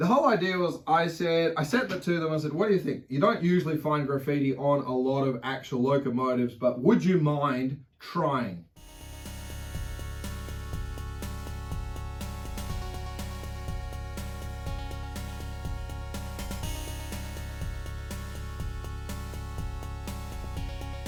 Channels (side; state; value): both; identical; correlation 1.00